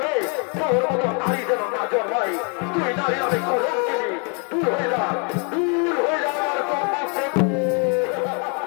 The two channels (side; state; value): right; quieter; 37.1 dB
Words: তোর মতো নারী যেন না জন্মাই। তুই নারী আমি কলম কিনি। দূর হয়ে যা, দূর হয়ে যা আমার সম্মুখ থেকে।